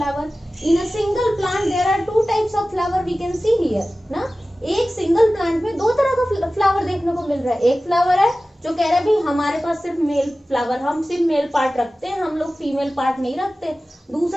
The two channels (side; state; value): both; normal; correlation 0.96